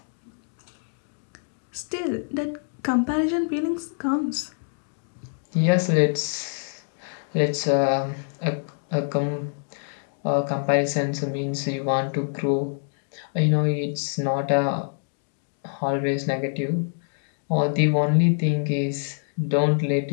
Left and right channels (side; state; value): right; silent; digital silence